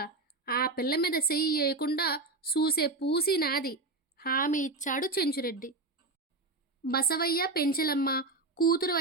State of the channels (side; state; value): left; quieter; 3.4 dB